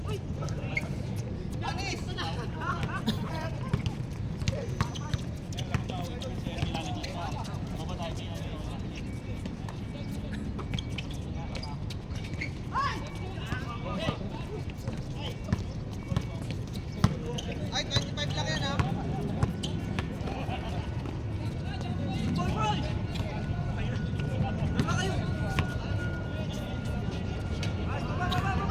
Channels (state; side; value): identical; both; correlation 1.00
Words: Ay, 25 lang yan ha.